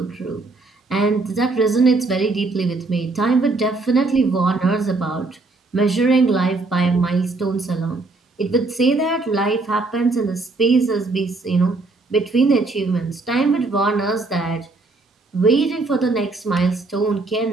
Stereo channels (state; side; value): quieter; left; 3.5 dB